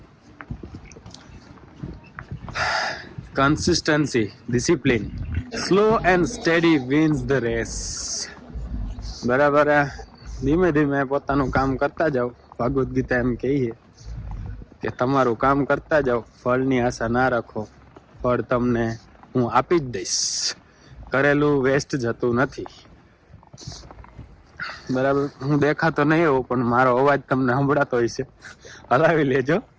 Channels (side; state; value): both; identical; correlation 1.00